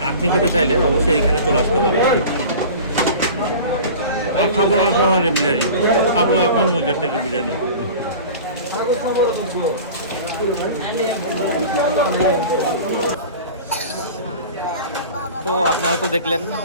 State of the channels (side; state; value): both; inverted; correlation -0.38